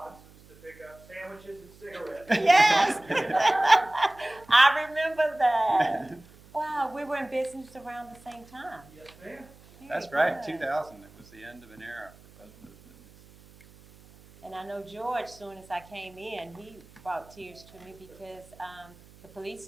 to pick up sandwiches and cigarettes. Yes. I remember that. Wow, we were in business around the same time. Yes, ma'am. That's right, 2000. It was the end of an era for both those businesses. And I know George, soon as I came in, he brought tears to me because the police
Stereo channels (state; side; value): noise; right; hum, 24 dB below the sound